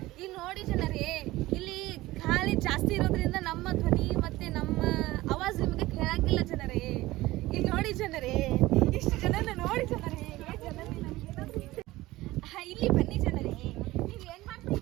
ಈಗ ನೋಡಿ ಜನರೇ, ಇಲ್ಲಿ ಗಾಳಿ ಜಾಸ್ತಿ ಇರೋದ್ರಿಂದ ನಮ್ಮ ಧ್ವನಿ ಮತ್ತೆ ನಮ್ಮ ಆವಾಜ್ ನಿಮಗೆ ಕೇಳಂಗಿಲ್ಲ ಜನರೇ. ಈಗ ನೋಡಿ ಜನರೇ, ಇಷ್ಟು ಜನನ ನೋಡಿ ಜನರೇ. ಇಲ್ಲಿ ಬನ್ನಿ ಜನರೇ. ನೀವು ಏನ್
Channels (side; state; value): left; quieter; 18.1 dB